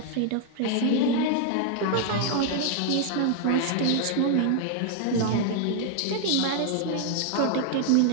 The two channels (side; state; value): both; different; correlation 0.00